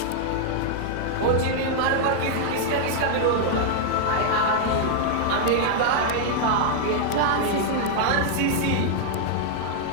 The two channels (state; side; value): different; both; correlation -0.01